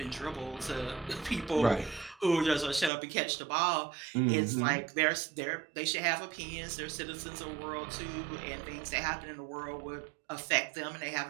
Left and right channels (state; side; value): drops out; left; at 2.9 s